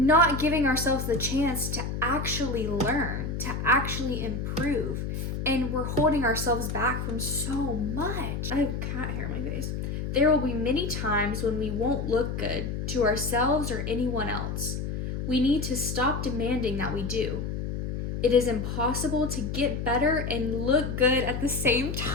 giving ourselves the chance to actually learn, to actually improve. And we're holding ourselves back from so much. I have cat hair in my face. There will be many times when we won't look good to ourselves or anyone else. We need to stop demanding that we do. It is impossible to get better and look good at the same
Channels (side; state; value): left; noise; hum, 4 dB below the sound